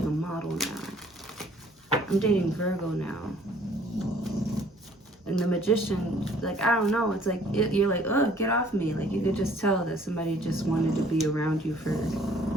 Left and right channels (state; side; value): normal; both; correlation 0.57